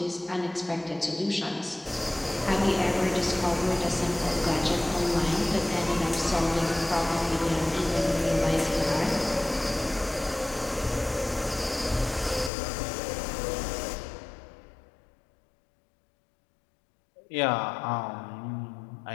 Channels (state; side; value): drops out; right; at 12.5 s